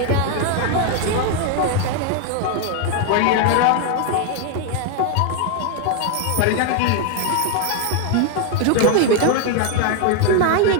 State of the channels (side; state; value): both; different; correlation 0.01